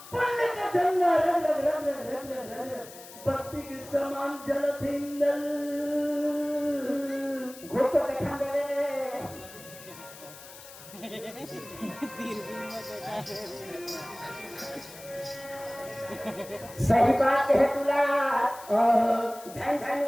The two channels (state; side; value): noise; left; hiss, 17 dB below the sound